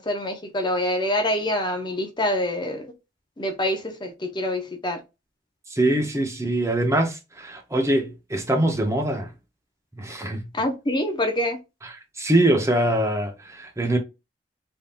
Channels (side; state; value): both; normal; correlation 0.55